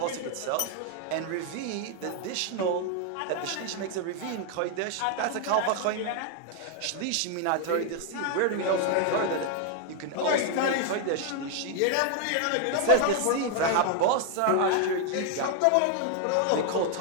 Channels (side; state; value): both; different; correlation 0.00